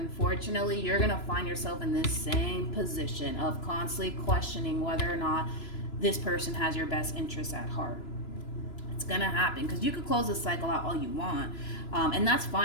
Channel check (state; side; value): late; right; 3.0 ms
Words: you're going to find yourself in this same position of constantly questioning whether or not this person has your best interests at heart. It's going to happen, because you could close this cycle out all you want, and that's